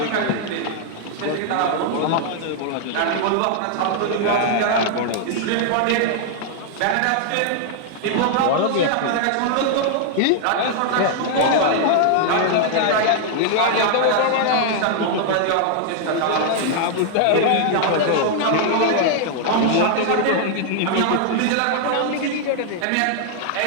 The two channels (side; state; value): both; different; correlation 0.00